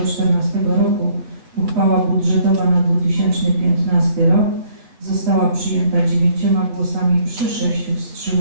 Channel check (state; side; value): late; left; 7.9 ms